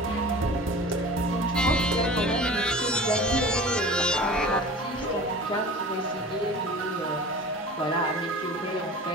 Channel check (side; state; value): both; normal; correlation 0.39